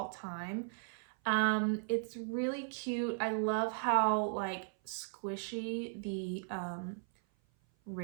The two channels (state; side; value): silent; left; 53 dB below the other